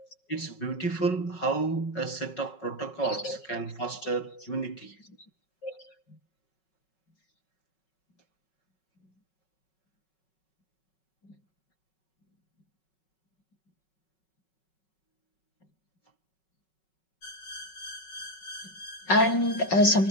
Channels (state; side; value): late; right; 5.4 ms